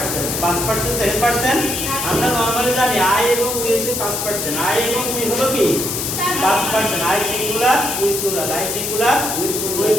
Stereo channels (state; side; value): noise; left; hiss, 3 dB below the sound